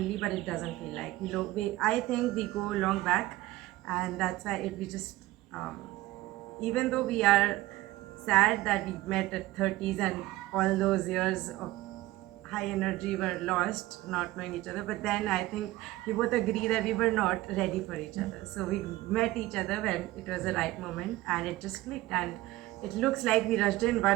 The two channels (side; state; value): left; quieter; 17.5 dB